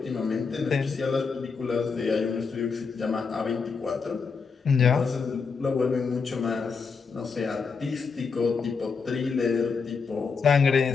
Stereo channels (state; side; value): quieter; right; 5.2 dB